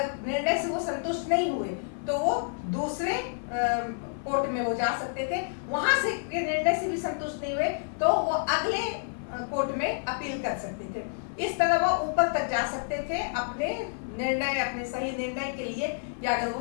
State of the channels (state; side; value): silent; right; 59 dB below the other